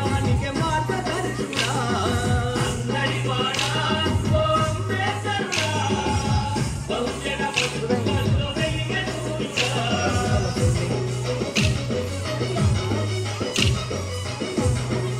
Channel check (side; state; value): both; identical; correlation 1.00